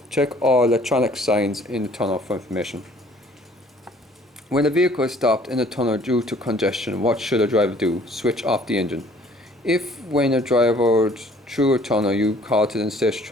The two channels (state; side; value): normal; both; correlation 0.56